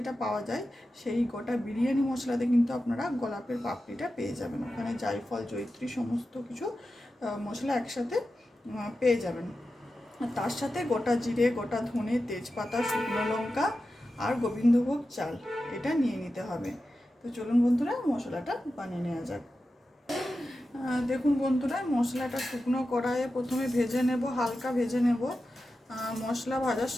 পাওয়া যায়, সেই গোটা বিরিয়ানি মশলাতে কিন্তু আপনারা গোলাপের পাপড়িটা পেয়ে যাবেন। ওখানে জায়ফল, জয়িত্রী সমস্ত কিছু মশলা একসাথে পেয়ে যাবেন। তার সাথে গোটা জিরে, গোটা ধনে, তেজপাতা, শুকনো লঙ্কা আর গোবিন্দভোগ চাল এটা নিয়ে নিতে হবে। তো চলুন বন্ধুরা মশলাটা বানিয়ে নেওয়া যাক। দেখুন বন্ধুরা, মশলাটা শুকনো কড়াইয়ে প্রথমে ভেজে নেব, হালকা ভেজে নেব। মশলা ভাজার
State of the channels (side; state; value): both; normal; correlation 0.92